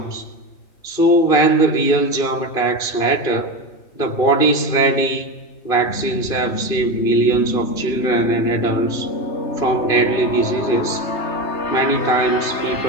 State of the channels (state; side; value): late; right; 2.5 ms